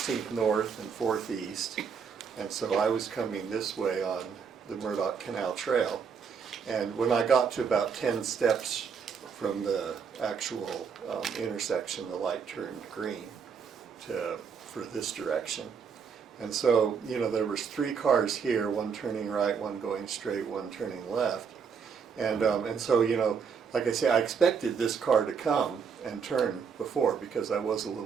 North and 4th East. And so I was coming this way on the Murdoch Canal Trail. And when I got to about 10 steps from the actual intersection, the light turned green for this direction. And so, you know, there was 3 cars here, one turning right, one going straight, one turning left. And so, you know, like I say, I expected this car to come and turn before because I was a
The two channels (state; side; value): quieter; left; 6.3 dB